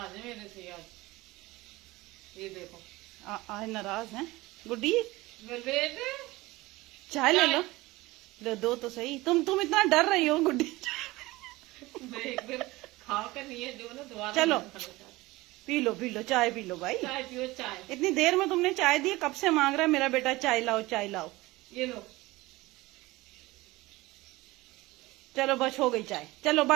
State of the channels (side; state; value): left; quieter; 20.2 dB